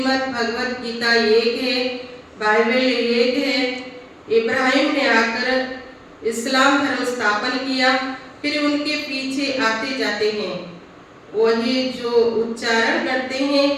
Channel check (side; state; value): both; identical; correlation 1.00